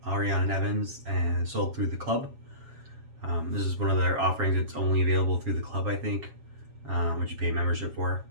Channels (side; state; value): left; late; 7.3 ms